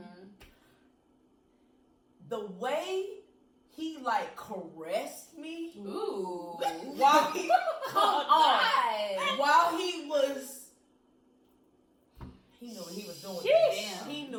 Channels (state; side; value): identical; both; correlation 1.00